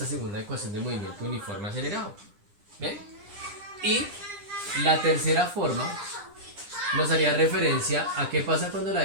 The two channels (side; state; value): left; late; 9.9 ms